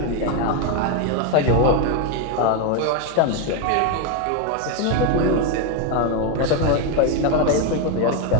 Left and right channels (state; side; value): different; both; correlation 0.01